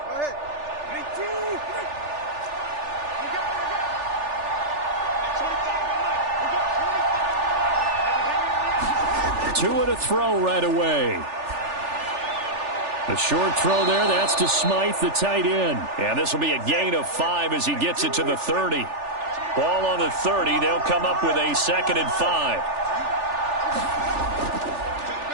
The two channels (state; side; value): late; left; 3.4 ms